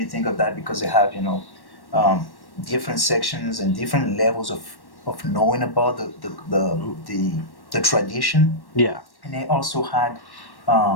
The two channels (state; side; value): late; right; 1.1 ms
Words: think of that, because they have different sections and different levels of knowing about the tradition. Yeah. And they also had